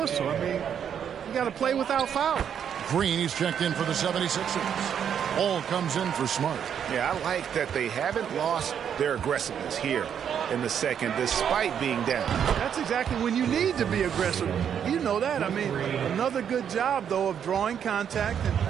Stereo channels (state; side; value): quieter; left; 8.4 dB